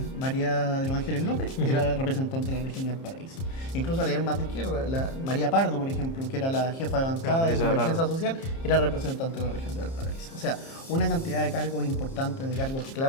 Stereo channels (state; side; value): late; right; 30 ms